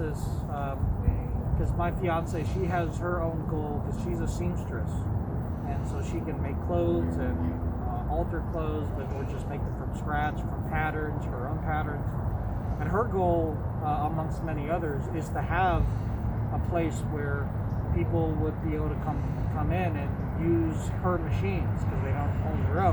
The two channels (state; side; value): identical; both; correlation 1.00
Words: because my fiance, she has her own goal because she's a seamstress, and so she can make clothes and alter clothes, but or just make them from scratch, from patterns, her own patterns. And her goal, amongst many others, is to have a place where people would be able to come in and use her machines because they don't own their